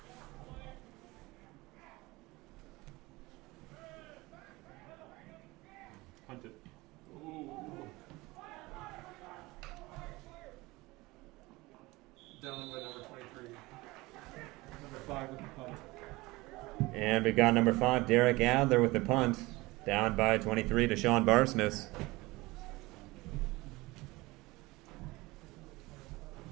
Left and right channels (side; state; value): left; quieter; 21.5 dB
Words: Punt it. Ooh. Down by number 23. Number 5 with the punt. And we've got number 5, Derek Adler with the punt. Down by 23, Deshaun Barsness.